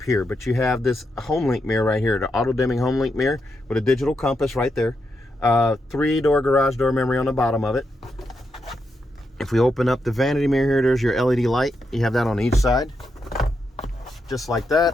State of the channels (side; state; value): both; normal; correlation 0.84